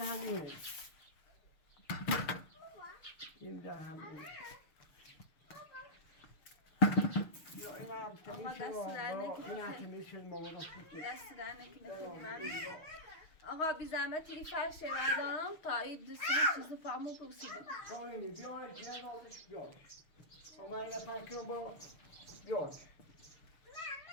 همینه این دره همینه یا این هم تمیشه این هم تمیشه مامانا سوکه دست در نکنه. خیلی ممنون. آقا بی زحمت یه فرش بردارم تا این دوستی چیز پامو پرسیدم. شاینی بیاره جن آزش بیاره اما این پنج کنم با بیاره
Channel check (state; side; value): late; right; 6.5 ms